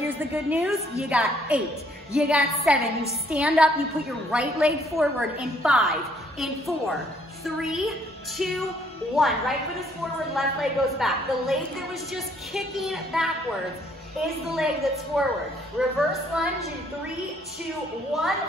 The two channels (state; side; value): normal; both; correlation 0.65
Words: the good news. You got 8, you got 7. You stand up, you put your right leg forward in 5, in 4, 3, 2, 1. Right foot is forward, left leg goes back. The leg that was just kicking backwards is the leg that's forward. Reverse lunge in 3, 2, 1.